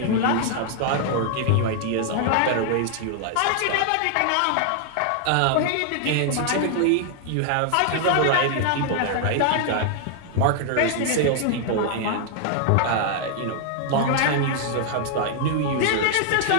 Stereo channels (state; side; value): different; both; correlation 0.00